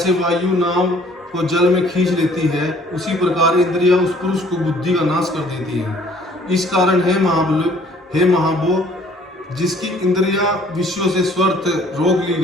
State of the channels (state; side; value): normal; both; correlation 0.57